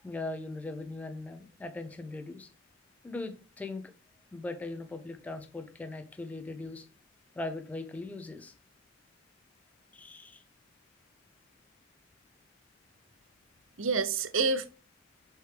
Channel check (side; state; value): both; normal; correlation 0.07